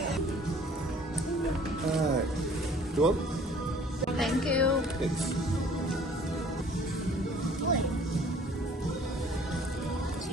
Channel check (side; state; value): both; normal; correlation 0.53